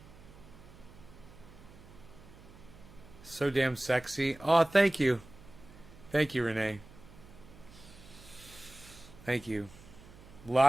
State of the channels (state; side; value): noise; right; hum, 20 dB below the sound